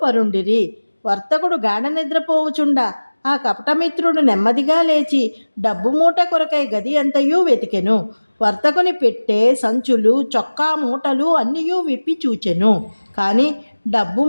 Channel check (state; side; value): inverted; both; correlation -1.00